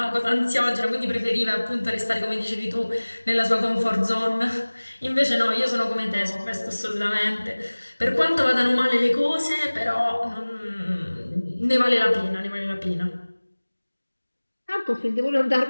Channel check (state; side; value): inverted; both; correlation -1.00